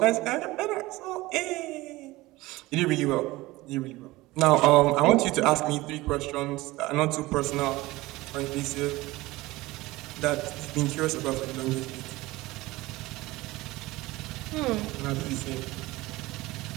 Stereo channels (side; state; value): left; quieter; 19.6 dB